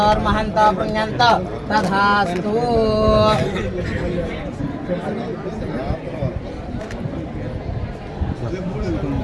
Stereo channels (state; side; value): identical; both; correlation 1.00